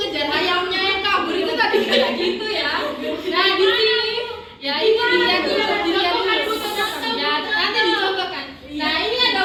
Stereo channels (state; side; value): identical; both; correlation 1.00